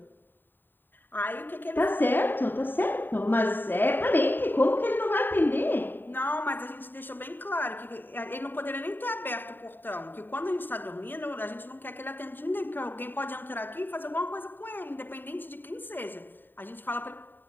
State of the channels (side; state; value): right; late; 0.093 ms